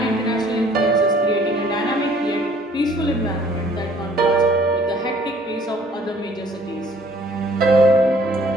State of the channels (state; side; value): normal; both; correlation 0.57